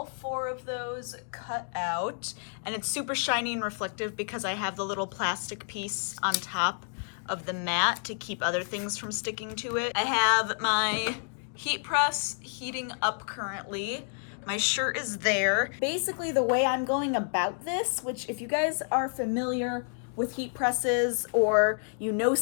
4 of those cut out, and it's super shiny and reflective because I have the little plastic piece on top of the mat to keep other things from sticking to it. I have my heat press heating up currently. My shirt is there. Basically, the way I'm going about this, which if you guys are familiar with heat presses or you know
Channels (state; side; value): silent; right; digital silence